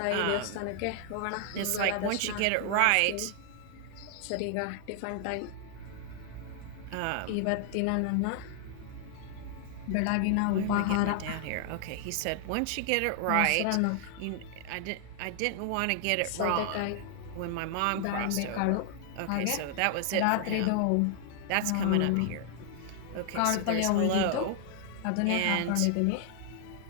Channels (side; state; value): both; different; correlation 0.00